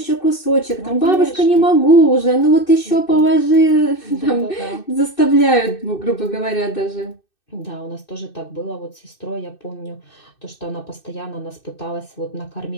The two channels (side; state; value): right; late; 2.6 ms